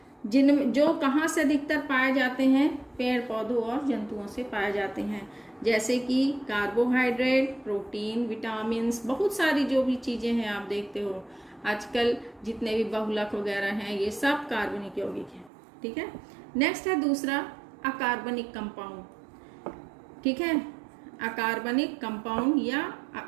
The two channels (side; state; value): left; drops out; at 15.5 s